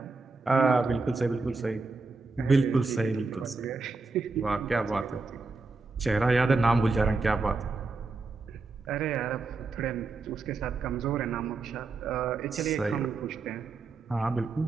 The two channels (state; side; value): quieter; left; 3.9 dB